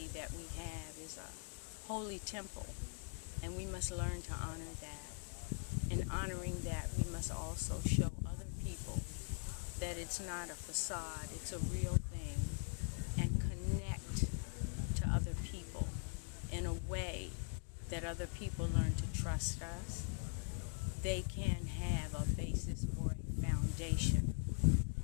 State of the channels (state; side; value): quieter; right; 38.7 dB